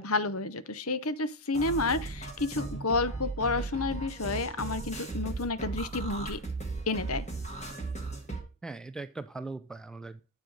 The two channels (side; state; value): both; normal; correlation 0.06